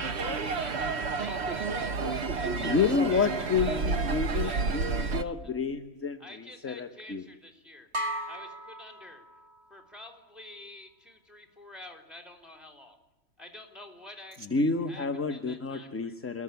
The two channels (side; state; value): left; late; 3.1 ms